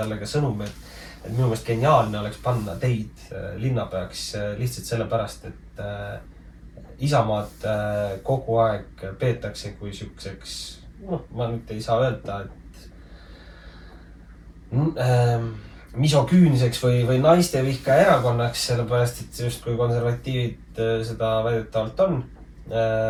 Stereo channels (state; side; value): identical; both; correlation 1.00